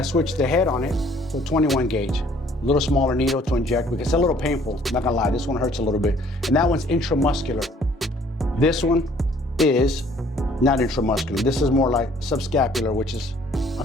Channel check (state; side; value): normal; both; correlation 0.58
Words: switch the head on it to a 21 gauge. A little smaller needle to inject because it's a little painful. I'm not gonna lie, this one hurts a little bit. And that one's intramuscular. This one is not intramuscular. This is more like subscapular, which is